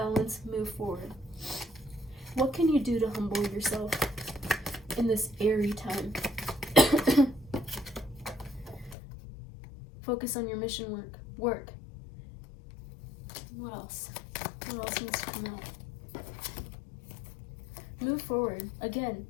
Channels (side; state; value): right; drops out; at 9.0 s